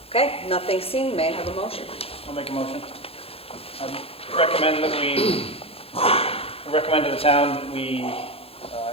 Okay, nothing seen. May I have a motion? I'll make a motion. I recommend to the town that we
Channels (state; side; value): late; right; 0.28 ms